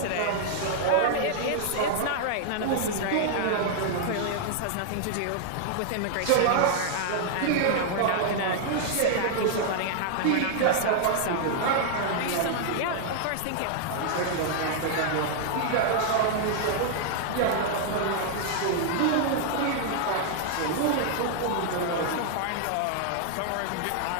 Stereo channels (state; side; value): different; both; correlation -0.01